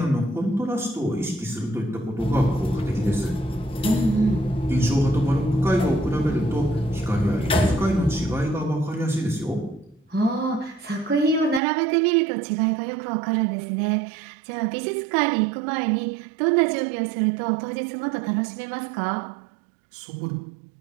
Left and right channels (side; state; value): left; drops out; at 11.6 s